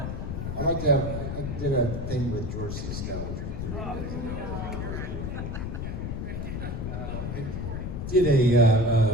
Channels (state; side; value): noise; left; rumble, 4 dB below the sound